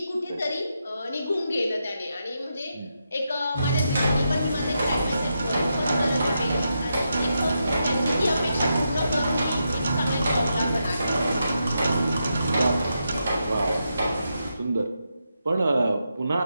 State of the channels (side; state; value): both; inverted; correlation -0.84